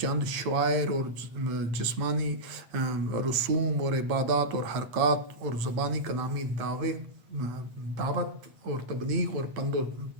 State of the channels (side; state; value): left; late; 8.8 ms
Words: شعائر اور جسمانی رسوم اور عبادات اور حرکات اور زبانی کلامی دعوت اور تبلیغ اور پند و